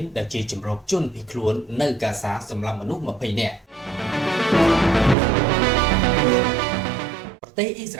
ដែលជាជំរកជនភៀសខ្លួននៅកាហ្សាសម្រាប់មនុស្ស20នាក់ប្រទេសអ៊ីស្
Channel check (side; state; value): left; drops out; at 5.2 s